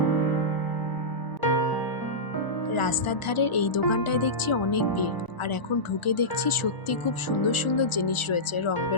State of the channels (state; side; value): late; right; 1.0 ms